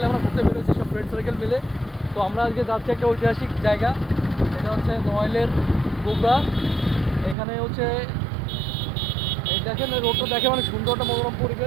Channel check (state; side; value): drops out; left; at 7.4 s